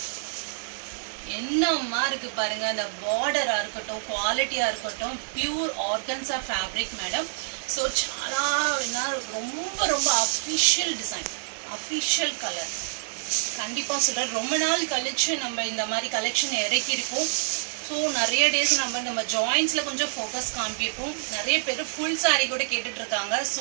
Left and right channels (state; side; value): silent; left; digital silence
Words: என்னம்மா இருக்கு பாருங்க, அந்த பார்டரா இருக்கட்டும், குவாலிட்டியா இருக்கட்டும், pure organza fabric madam. So చాలా ரொம்ப ரொம்ப அஃபிஷியல் டிசைன், அஃபிஷியல் கலர். கண்டிப்பாக சொல்கிறேன், ரொம்ப நாள் கழிச்சு நம்ம இந்த மாதிரி கலெக்ஷன் இறக்கியிருக்கோம். ஸோ நிறைய டேஸ் நம்ம ஜாயின்ஸில் கொஞ்சம் ஃபோக்கஸ் காமிப்போம். நிறைய பேர் ஃபுல் சாரீ கூட கேட்டுட்டு இருக்காங்க.